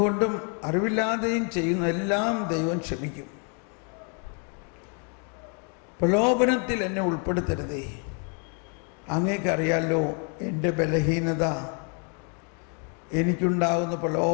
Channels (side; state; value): right; quieter; 39.9 dB